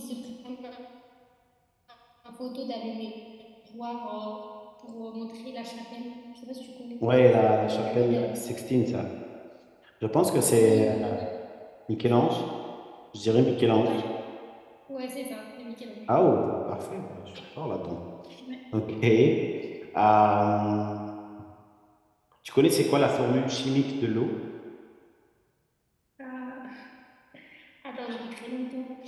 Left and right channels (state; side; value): identical; both; correlation 1.00